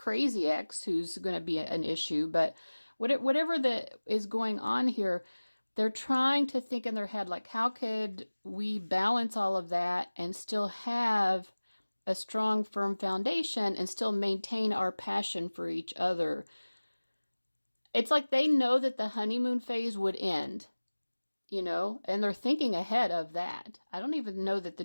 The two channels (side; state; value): both; inverted; correlation -1.00